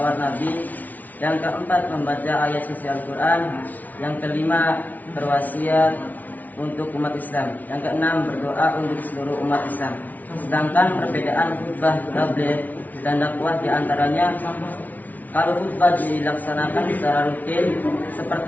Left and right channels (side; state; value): right; late; 0.078 ms